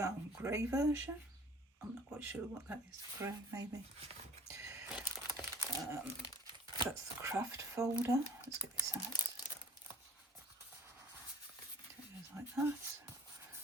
grey version. I'm not quite sure what that is. Grey, maybe. That's the craft folder. Let's get this out. It goes like that.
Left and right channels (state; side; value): normal; both; correlation 0.49